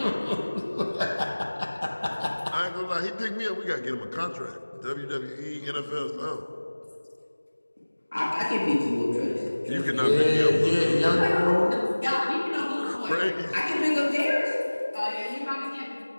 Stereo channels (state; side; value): inverted; both; correlation -1.00